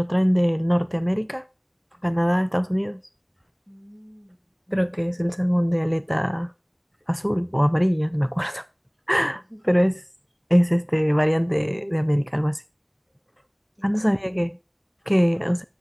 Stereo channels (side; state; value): both; identical; correlation 1.00